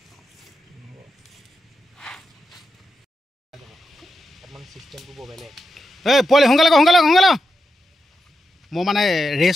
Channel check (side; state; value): both; normal; correlation 0.87